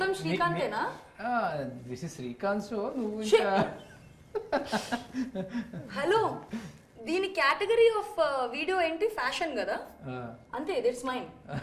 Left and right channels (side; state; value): both; identical; correlation 1.00